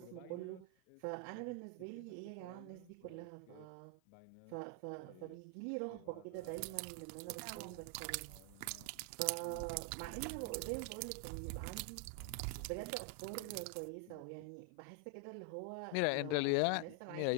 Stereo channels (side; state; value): both; different; correlation 0.00